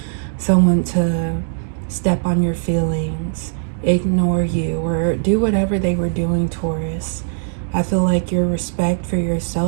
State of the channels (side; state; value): left; silent; 66 dB below the other